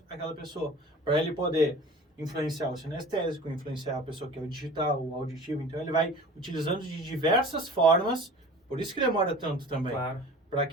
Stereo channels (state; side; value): normal; both; correlation 0.42